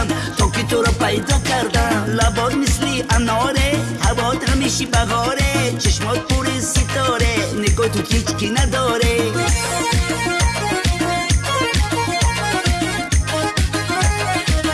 تا که تو رو پیدا کردم. لبات مثلی اناره، هوات همیشه بهاره، چشمات پر ستاره، نگاه تو هیچ کی نداره.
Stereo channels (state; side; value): identical; both; correlation 1.00